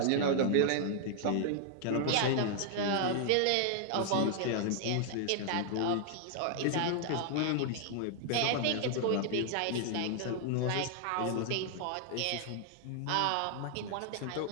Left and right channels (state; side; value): different; both; correlation 0.00